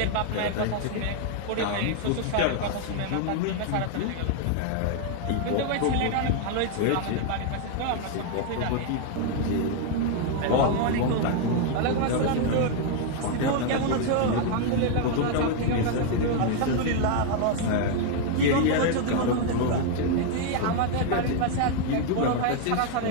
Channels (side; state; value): both; different; correlation 0.00